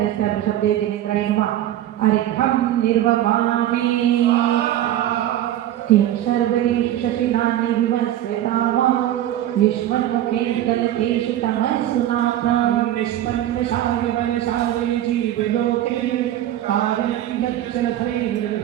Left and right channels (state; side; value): quieter; left; 12.7 dB